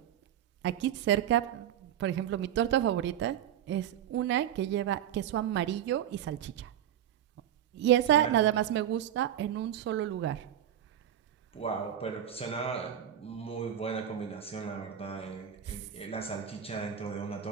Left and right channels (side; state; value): left; quieter; 10.4 dB